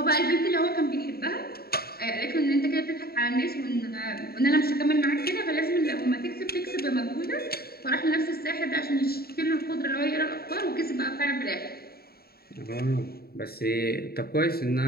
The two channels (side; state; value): right; late; 0.45 ms